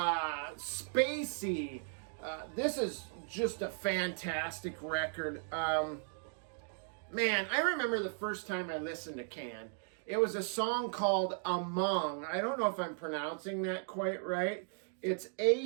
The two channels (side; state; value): left; silent; 53 dB below the other